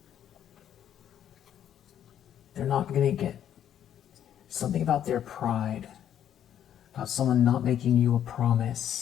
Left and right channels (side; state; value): right; quieter; 10.1 dB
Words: They're not going to get something about their pride, about someone not making you a